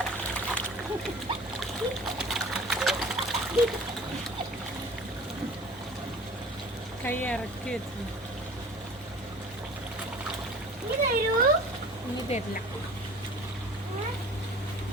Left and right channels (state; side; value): normal; both; correlation 0.44